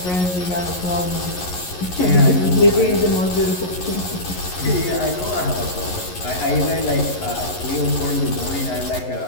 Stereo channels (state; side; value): late; right; 11 ms